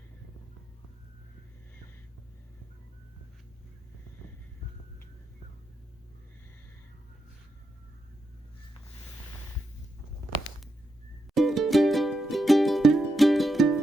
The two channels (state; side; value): normal; both; correlation 0.84